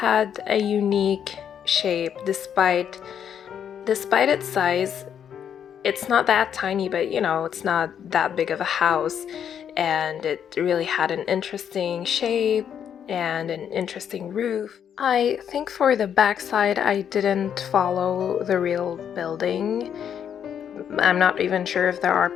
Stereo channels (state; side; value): quieter; right; 8.6 dB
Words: a unique shape despite its size. It's not that tiny, but you know, it's not that big of a house, and it really had an interesting shape and an interesting roof. I think for the backside I didn't follow the real building. I'm not even sure if there are